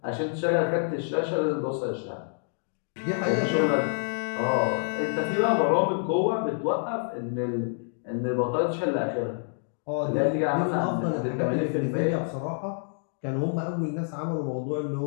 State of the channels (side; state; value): right; silent; digital silence